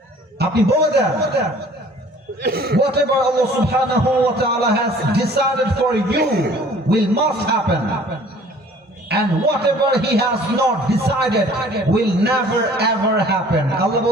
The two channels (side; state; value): both; normal; correlation 0.52